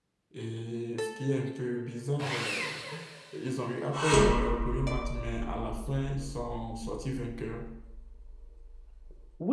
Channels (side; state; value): both; identical; correlation 1.00